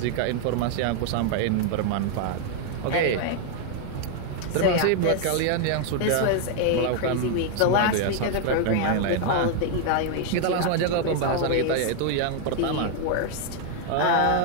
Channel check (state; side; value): different; both; correlation 0.00